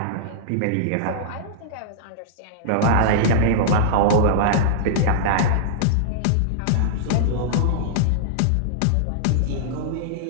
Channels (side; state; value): both; different; correlation -0.01